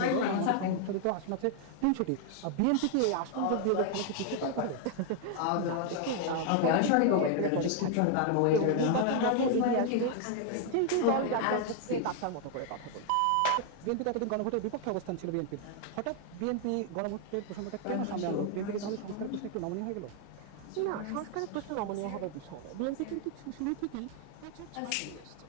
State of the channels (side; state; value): both; different; correlation 0.00